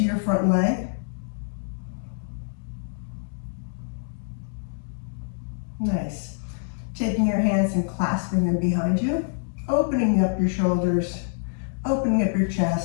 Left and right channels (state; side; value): silent; right; digital silence